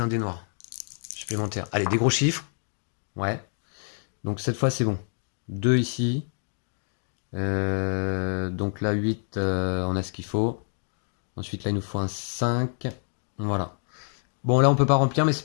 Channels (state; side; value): silent; right; digital silence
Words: dé noir supplémentaire. Allez, des gros chiffres. Ouais. Donc cette fois c'est bon. 2 ici. Donc là 8, on a ce qu'il faut. Ensuite là il nous faut un 5. Voilà. Bon là on peut pas remplir mais c'est